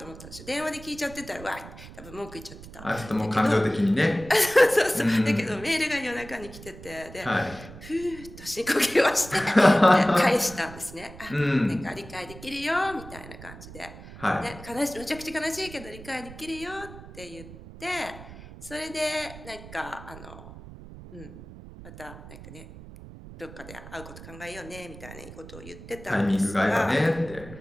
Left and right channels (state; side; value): noise; right; rumble, 16 dB below the sound